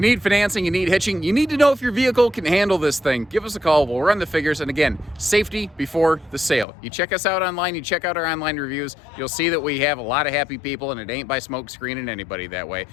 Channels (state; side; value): drops out; right; at 6.7 s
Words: need financing, you need hitching, you need to know if your vehicle can handle this thing. Give us a call, we'll run the figures, and again, safety before the sale. You check us out online, you check out our online reviews, you'll see that we have a lot of happy people, and it ain't by smoke screening anybody that way.